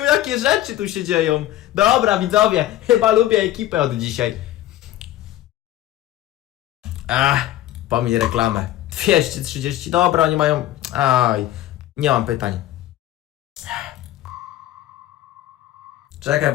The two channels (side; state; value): right; quieter; 14.0 dB